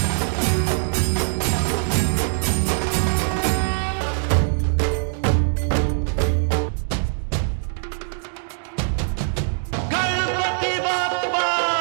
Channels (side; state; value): left; silent; digital silence